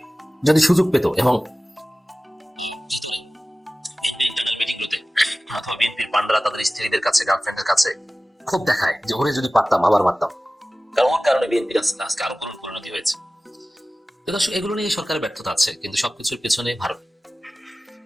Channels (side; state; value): both; normal; correlation 0.97